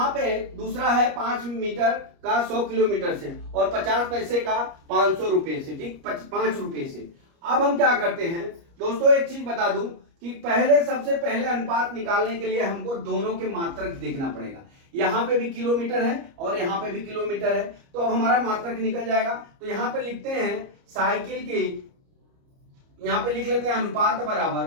पे दूसरा है 5 मीटर का 100 किलोमीटर से और 50 पैसे का 500 रुपए से। ठीक, 5 रुपए से। अब हम क्या करते हैं दोस्तों, एक चीज बता दूं कि सबसे पहले अनुपात निकालने के लिए हमको दोनों के मात्रक देखना पड़ेगा। यहां पे भी किलोमीटर है और यहां पे भी किलोमीटर है, तो अब हमारा मात्रक निकल जाएगा। तो यहां पे लिखते हैं साइकिल की, यहां पे लिख लेते हैं अनुपात बराबर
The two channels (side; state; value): left; late; 29 ms